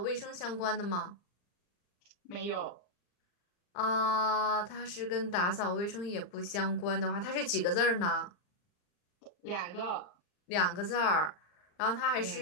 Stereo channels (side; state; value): right; late; 39 ms